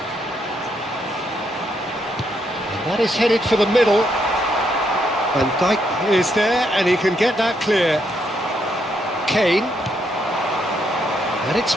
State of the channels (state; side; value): normal; both; correlation 0.76